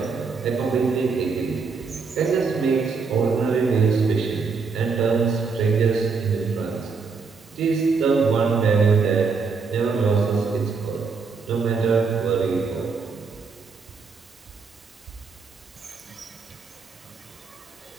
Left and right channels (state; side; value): quieter; left; 4.9 dB